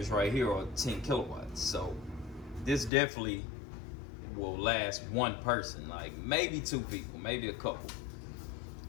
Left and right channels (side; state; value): right; drops out; at 2.9 s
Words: right here are 10 kilowatts. So this definitely will last one person, like maybe 2 people, maybe a couple.